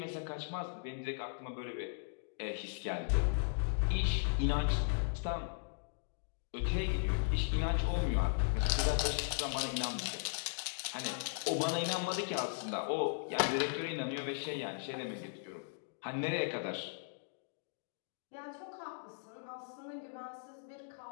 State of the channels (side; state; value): right; silent; digital silence